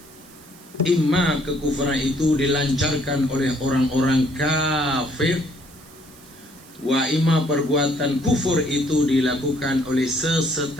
Imma kekufuran itu dilancarkan oleh orang-orang kafir, wa imma perbuatan kufur itu dilakukan oleh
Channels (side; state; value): right; noise; hiss, 23 dB below the sound